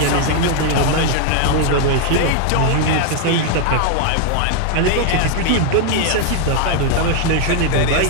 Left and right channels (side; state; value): both; different; correlation 0.00